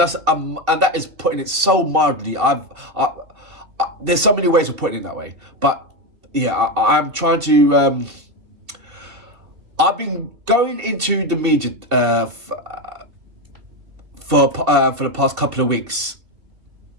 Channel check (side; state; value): left; late; 2.7 ms